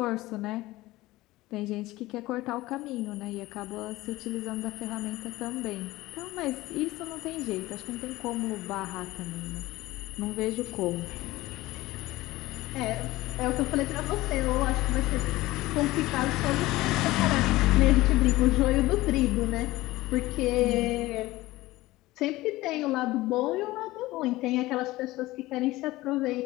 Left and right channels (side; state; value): right; quieter; 18.4 dB